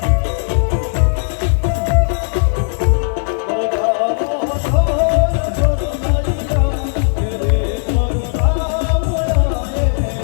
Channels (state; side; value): silent; right; digital silence